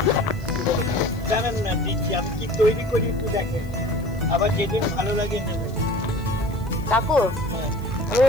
জানেন না দিচ্ছি আমি কি তৈরি করি একটু দেখেন আবার যেদিন ভালো লাগে নেবেন কাকু আমি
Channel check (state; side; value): noise; left; hiss, 26 dB below the sound